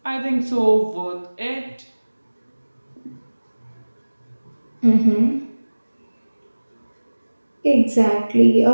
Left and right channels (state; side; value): inverted; both; correlation -1.00